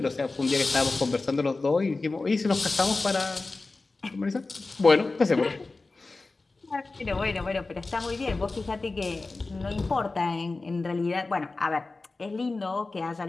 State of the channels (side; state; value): right; quieter; 3.5 dB